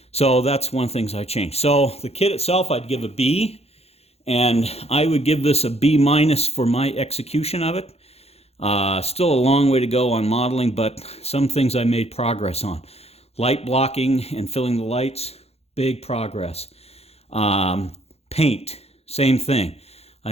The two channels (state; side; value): late; right; 0.30 ms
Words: So that's one of the things I changed. So the kit itself, I'd give a B, and I would give this a B- for my execution of it. Still a long way to go on modeling, but some things I made progress on. Light blocking and filling the lights, big progress. Paint, same thing.